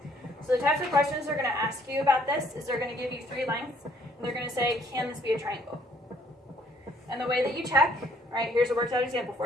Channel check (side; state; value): both; normal; correlation 0.63